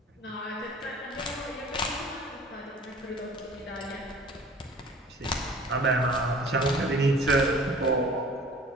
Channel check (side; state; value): both; normal; correlation 0.47